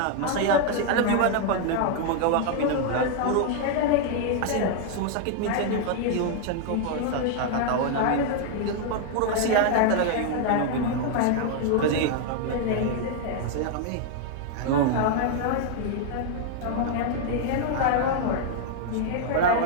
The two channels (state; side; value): different; both; correlation 0.00